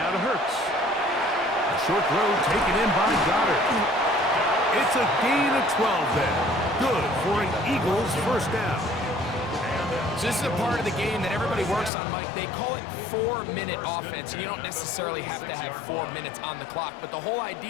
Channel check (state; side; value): drops out; right; at 11.9 s